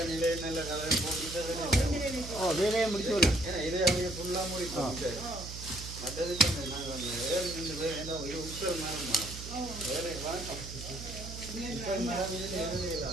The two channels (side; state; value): right; noise; hum, 10 dB below the sound